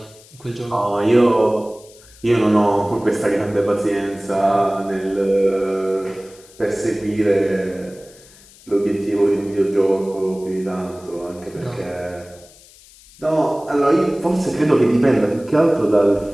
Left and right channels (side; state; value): left; noise; hiss, 24 dB below the sound